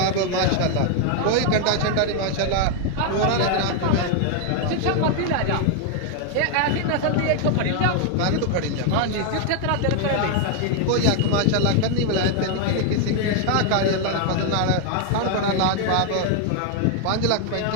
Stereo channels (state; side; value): different; both; correlation 0.01